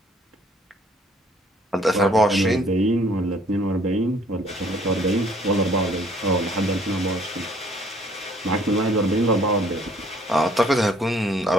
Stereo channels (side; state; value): both; normal; correlation 0.60